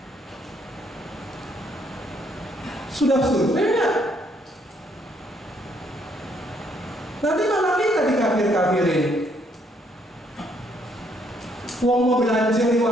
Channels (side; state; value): both; normal; correlation 0.69